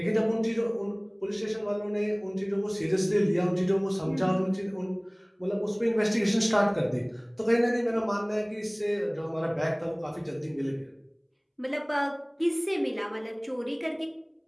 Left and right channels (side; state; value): both; identical; correlation 1.00